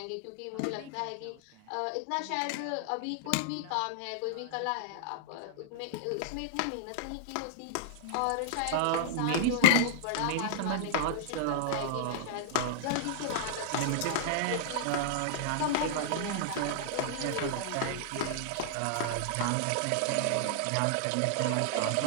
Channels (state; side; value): different; both; correlation -0.01